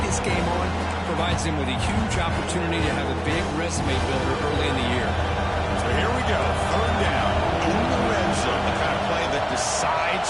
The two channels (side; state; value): both; identical; correlation 1.00